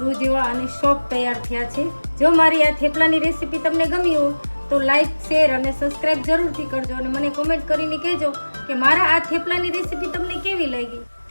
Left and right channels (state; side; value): inverted; both; correlation -1.00